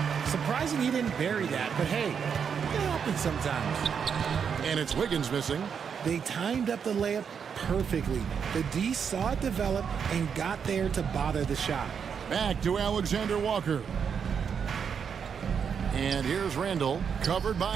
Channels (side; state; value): left; quieter; 7.0 dB